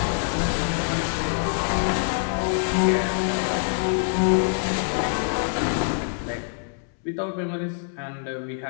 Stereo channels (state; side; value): silent; right; 62 dB below the other